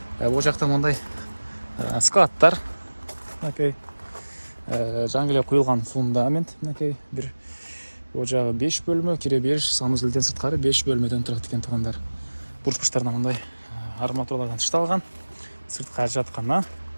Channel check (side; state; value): both; inverted; correlation -1.00